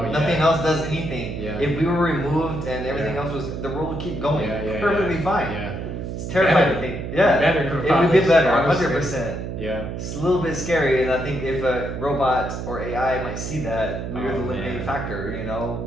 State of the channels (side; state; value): right; noise; hum, 6 dB below the sound